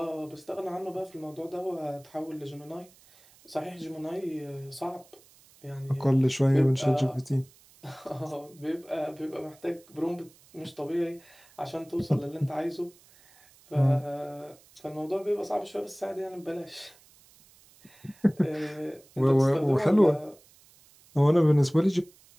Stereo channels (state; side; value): noise; right; hiss, 27 dB below the sound